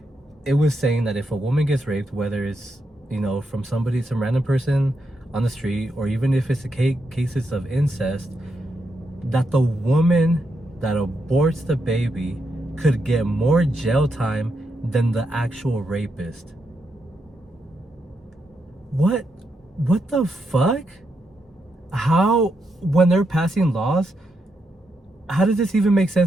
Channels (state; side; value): normal; both; correlation 0.82